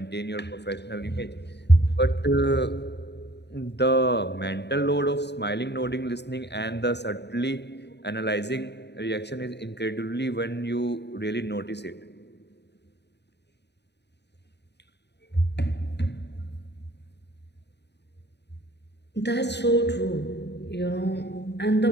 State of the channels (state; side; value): late; right; 0.50 ms